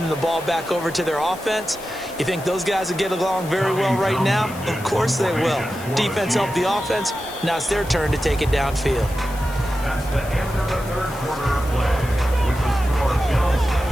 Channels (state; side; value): noise; left; hiss, 17 dB below the sound